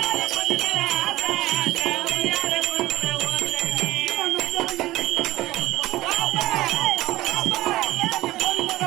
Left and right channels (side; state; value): left; quieter; 17.2 dB